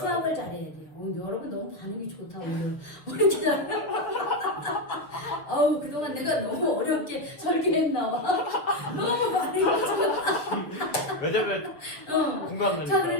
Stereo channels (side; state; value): right; late; 6.4 ms